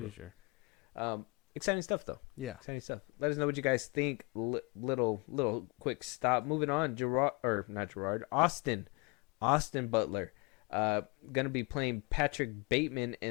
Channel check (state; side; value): quieter; right; 28.9 dB